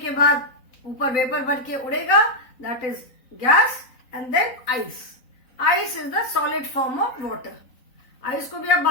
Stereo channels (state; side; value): late; right; 3.9 ms